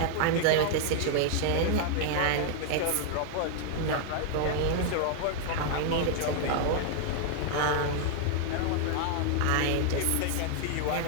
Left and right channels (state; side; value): different; both; correlation 0.00